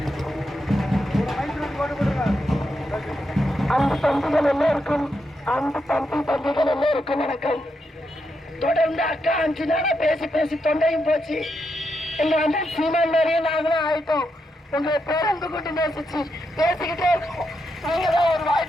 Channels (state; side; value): normal; both; correlation 0.83